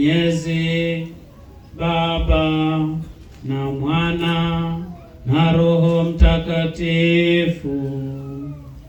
Baba na Mwana na Roho Mtakatifu.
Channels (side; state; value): both; identical; correlation 1.00